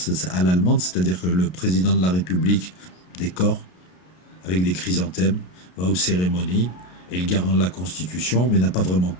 à l'allemande, c'est-à-dire que le président de la République décore avec des chrysanthèmes, va aux cérémonies, est le garant de la Constitution, mais n'a pas vraiment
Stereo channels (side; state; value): right; late; 33 ms